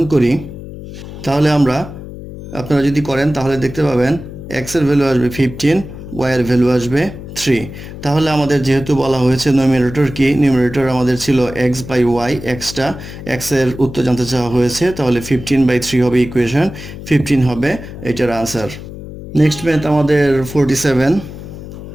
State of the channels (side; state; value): left; noise; hum, 12 dB below the sound